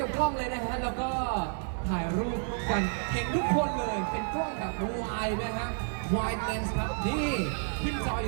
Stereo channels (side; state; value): left; silent; 57 dB below the other